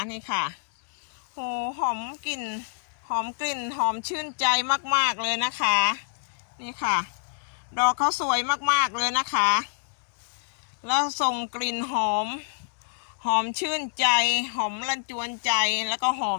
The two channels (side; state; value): right; silent; digital silence